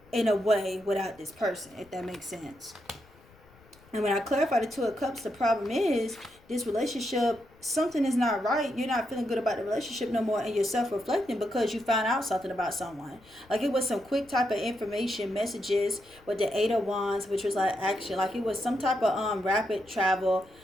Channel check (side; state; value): left; noise; rumble, 27 dB below the sound